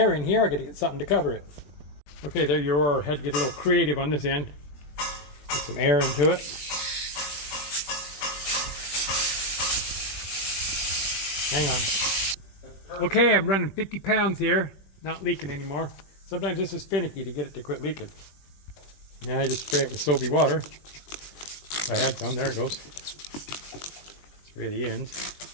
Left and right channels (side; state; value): right; late; 20 ms